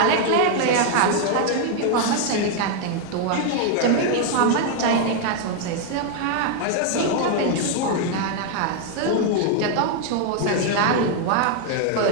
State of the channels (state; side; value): different; both; correlation 0.00